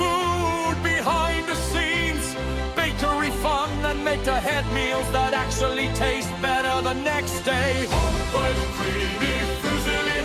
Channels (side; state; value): both; identical; correlation 1.00